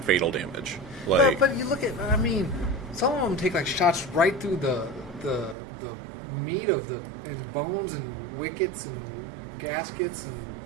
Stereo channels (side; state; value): left; drops out; at 5.6 s